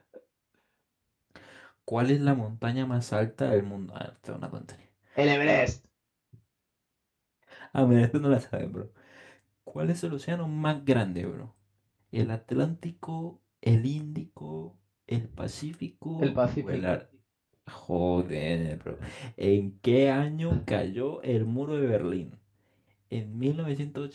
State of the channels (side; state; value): both; identical; correlation 1.00